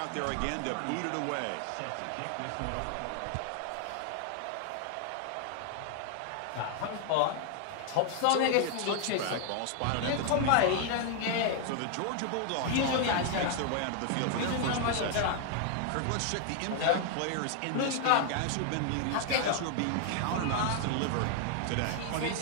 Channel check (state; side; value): different; both; correlation 0.00